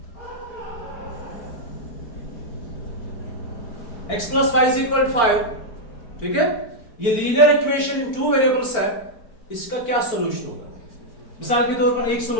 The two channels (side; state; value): right; late; 4.4 ms